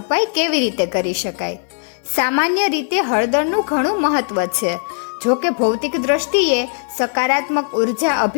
કેવી રીતે કરી શકાય. સામાન્ય રીતે હળદરનું ઘણું મહત્વ છે. જો કે ભૌતિક દ્રષ્ટિએ સકારાત્મક ઉર્જા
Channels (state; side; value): silent; right; 67 dB below the other